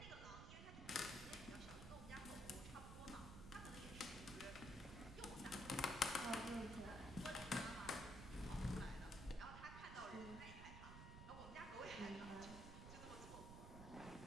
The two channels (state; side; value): noise; right; rumble, 8 dB below the sound